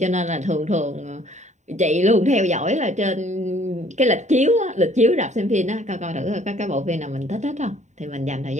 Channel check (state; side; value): late; left; 0.34 ms